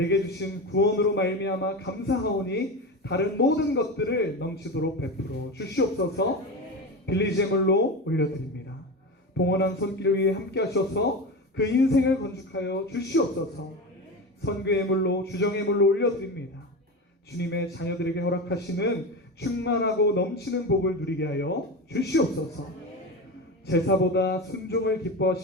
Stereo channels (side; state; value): both; normal; correlation 0.23